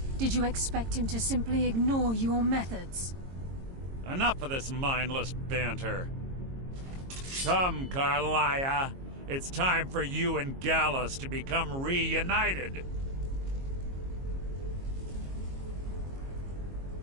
Did you expect him to simply ignore your methods? Enough of this mindless banter. Come, Carlia. It's time for you and Gallus to become reunited.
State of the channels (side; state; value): left; late; 22 ms